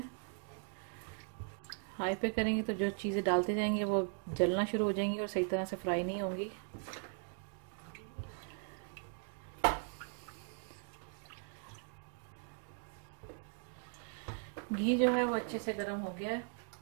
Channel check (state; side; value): silent; left; 52 dB below the other